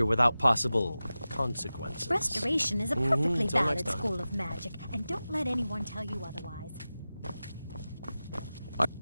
without possible consequences. Restoration is a perfectly Until valid next time. school of magic, and don't let anyone tell you otherwise.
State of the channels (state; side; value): inverted; both; correlation -0.95